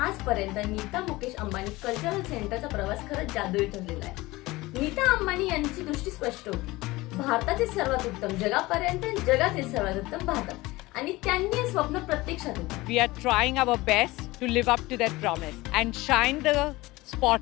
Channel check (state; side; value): quieter; right; 20.3 dB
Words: Nita Mukesh Ambani cultural सेंटरचा प्रवास खरंच जादुई ठरलेला आहे. नीता अंबानी यांची दृष्टी स्पष्ट होती, भारताचे सर्वात उत्तम जगापर्यंत, जगातील सर्वात उत्तम भारतात, आणि त्यांनी हे स्वप्न प्रत्यक्षात उतरवले. We are trying our best to live up to that promise and shine the